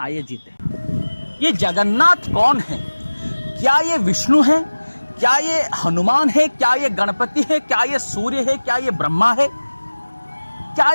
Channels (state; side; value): inverted; both; correlation -1.00